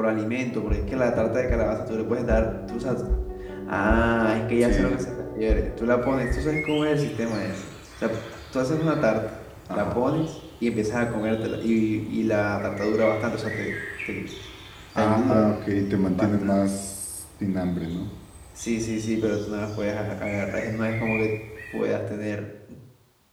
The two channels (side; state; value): both; identical; correlation 1.00